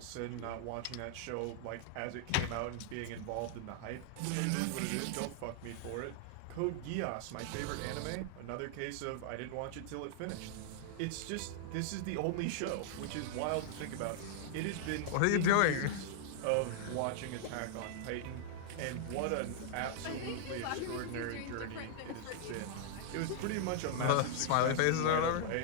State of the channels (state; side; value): different; both; correlation -0.01